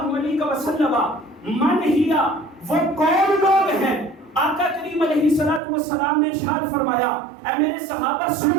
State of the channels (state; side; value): drops out; left; at 5.6 s